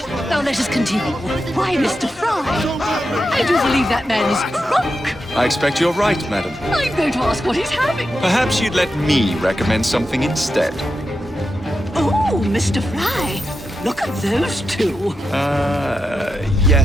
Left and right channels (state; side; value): normal; both; correlation 0.88